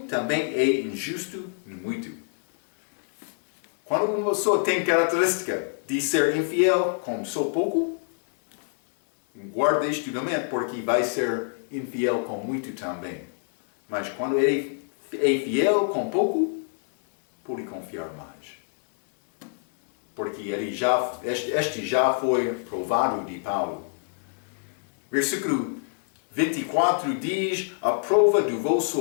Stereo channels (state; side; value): silent; right; 60 dB below the other